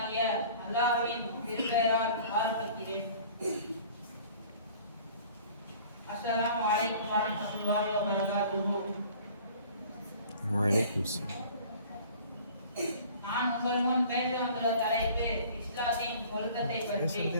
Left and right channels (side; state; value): both; inverted; correlation -0.48